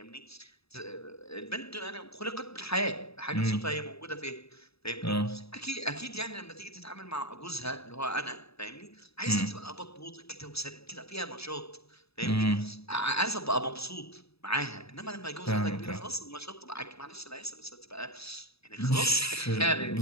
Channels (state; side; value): late; right; 0.78 ms